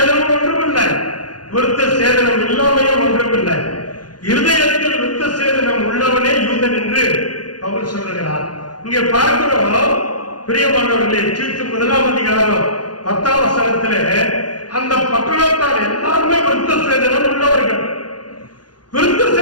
ஒன்றுமில்லை, விருத்த சேதனம் இல்லாமையும் ஒன்றுமில்லை. இருதயத்தில் விருத்த சேதனம் உள்ளவனே யூதன் என்று பவுல் சொல்லுகிறார். இங்கே பார்க்கிறோம் பிரியமானவர்களே, தீத்து 1ஆம் அதிகாரம் 10ஆம் வசனத்திலே அந்த பட்டணத்தார் எல்லாருமே விருத்த சேதனம் உள்ளவர்கள். விருத்த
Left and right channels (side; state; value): right; late; 0.70 ms